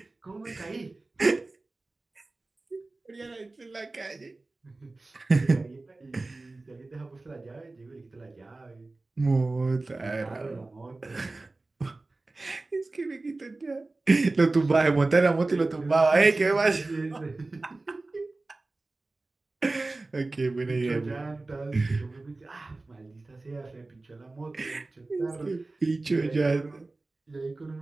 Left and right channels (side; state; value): left; quieter; 3.2 dB